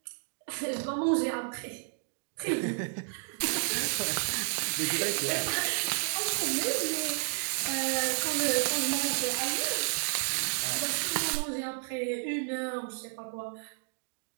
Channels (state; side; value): quieter; left; 36.4 dB